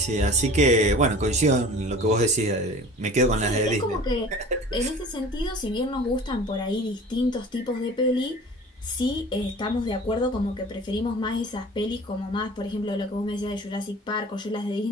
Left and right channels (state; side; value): normal; both; correlation 0.42